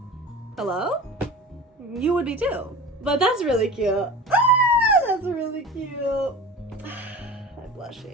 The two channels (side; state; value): both; normal; correlation 0.35